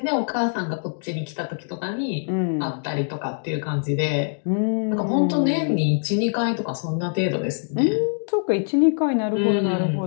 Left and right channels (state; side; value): silent; right; digital silence